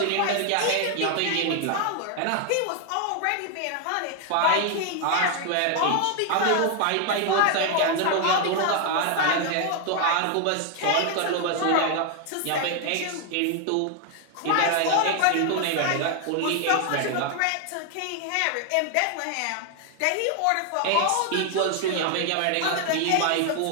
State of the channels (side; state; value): both; different; correlation 0.00